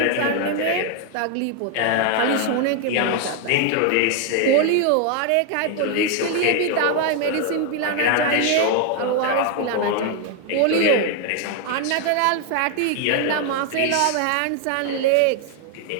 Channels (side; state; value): both; different; correlation 0.01